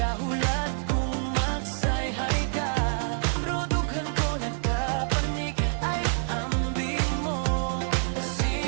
kung magsayhay ka. Bro, dughan ko nagkapanik, ay ambing mo.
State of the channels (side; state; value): left; silent; digital silence